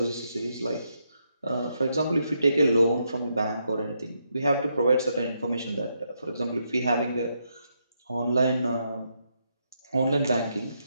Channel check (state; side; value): inverted; both; correlation -0.79